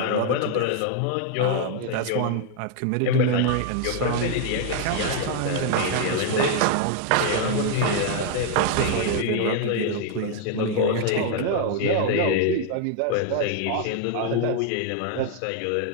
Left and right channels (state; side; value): different; both; correlation 0.00